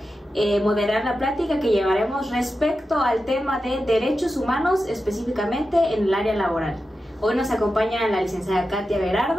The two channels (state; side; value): normal; both; correlation 0.91